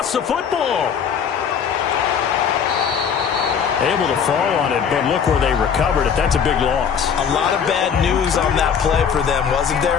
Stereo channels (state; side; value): quieter; right; 7.2 dB